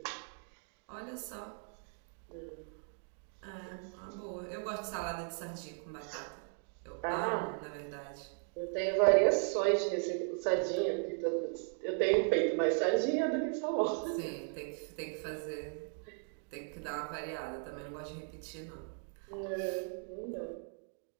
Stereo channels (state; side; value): silent; left; 53 dB below the other